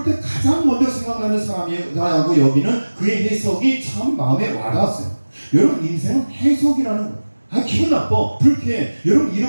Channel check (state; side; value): inverted; both; correlation -1.00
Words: 때 가장 먼저 생각나는 사람이라고 여기는 그의 해석이 참 마음에 와닿았어요. 여러분 인생은 해석이라는 거. 기분 나빠, 불쾌해. 여러분